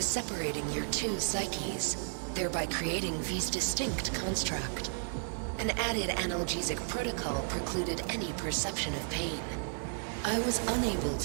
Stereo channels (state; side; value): silent; left; digital silence